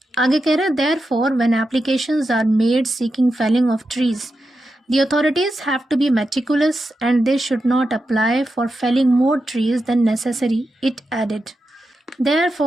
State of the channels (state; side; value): normal; both; correlation 0.89